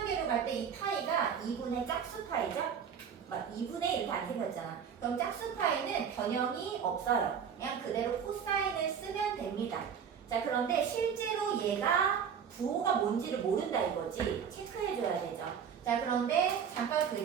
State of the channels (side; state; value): left; quieter; 7.4 dB